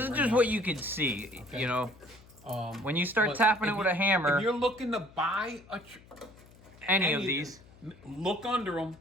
is just what you can see, you know. When you start tapping it with a hammer. If you're looking to buy any of these, look under them,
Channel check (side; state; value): left; noise; hum, 24 dB below the sound